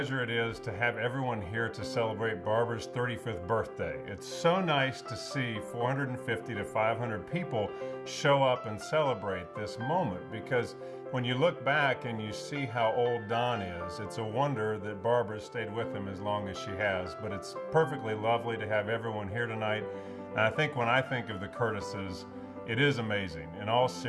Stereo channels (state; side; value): identical; both; correlation 1.00